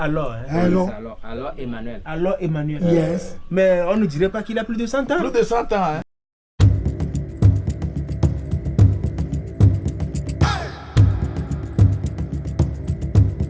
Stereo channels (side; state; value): both; identical; correlation 1.00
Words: hein? Alors Emmanuel. Alors Emmanuel. Yes. Mais on ne dirait pas qu'il a plus de 100 ans. Plus de 100 ans, hein?